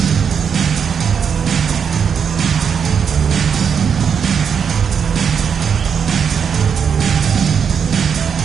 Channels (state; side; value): quieter; left; 7.0 dB